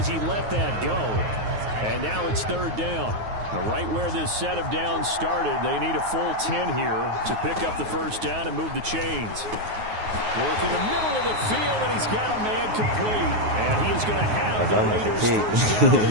he let that go. And now it's 3rd down. Right where this set of downs started, they need a full 10 here to pick up the 1st down and move the chains. Work in the middle of the field, and he's got a man complete. And he is going to have the Raiders' 1st down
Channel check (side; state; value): left; late; 9.4 ms